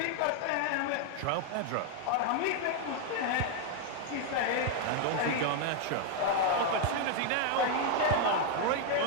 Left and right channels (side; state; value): both; different; correlation 0.00